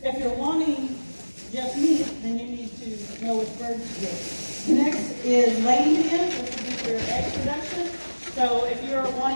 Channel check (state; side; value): inverted; both; correlation -1.00